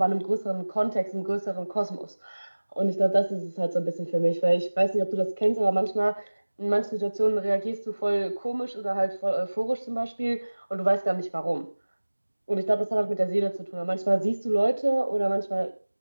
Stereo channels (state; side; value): inverted; both; correlation -1.00